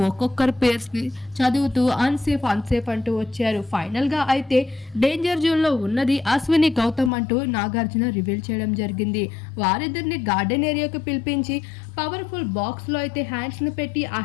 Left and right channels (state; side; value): drops out; right; at 7.1 s